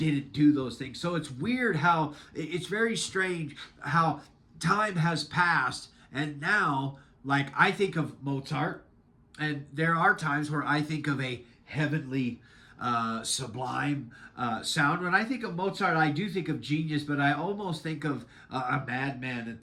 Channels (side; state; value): both; identical; correlation 1.00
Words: do those things. So it's weird it's very strange how time has passed, and now, like, I think of Mozart, and there are times where I think of a heavenly sublime sound. When I think of Mozart, I do think of genius, but I almost think of a madman at